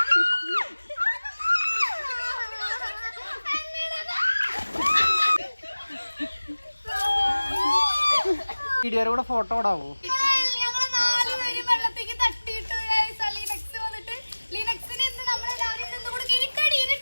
വീഡിയോയുടെ കൂടെ ഫോട്ടോ ഇടാവോ?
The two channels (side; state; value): both; inverted; correlation -1.00